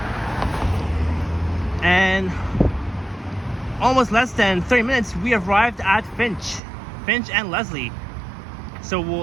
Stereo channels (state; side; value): drops out; left; at 6.6 s